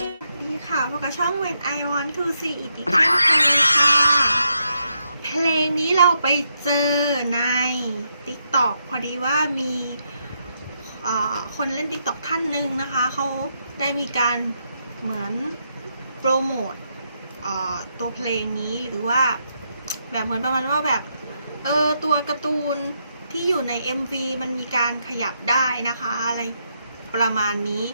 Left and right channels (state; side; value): inverted; both; correlation -0.80